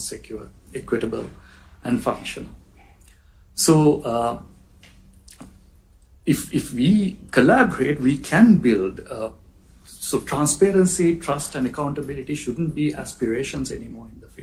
equitable, and functional. So if we collaborate, we can build. So transparency, trust, and accountability shouldn't be aspirations anymore in the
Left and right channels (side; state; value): both; identical; correlation 1.00